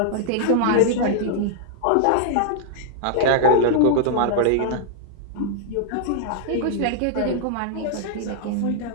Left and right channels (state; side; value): different; both; correlation -0.01